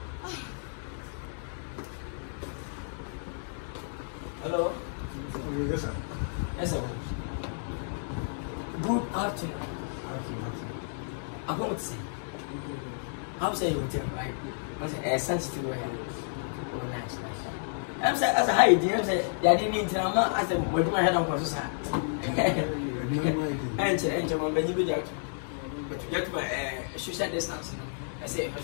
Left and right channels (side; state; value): right; silent; 57 dB below the other